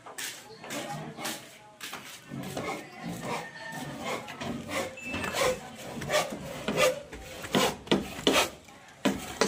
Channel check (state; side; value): identical; both; correlation 1.00